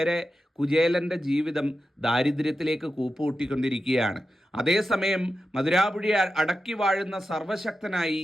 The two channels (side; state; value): both; normal; correlation 0.91